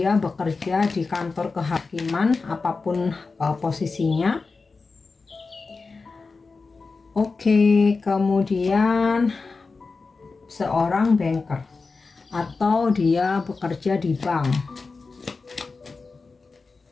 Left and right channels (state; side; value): quieter; right; 4.2 dB